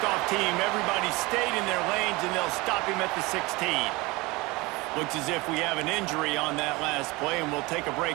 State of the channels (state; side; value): quieter; left; 23.1 dB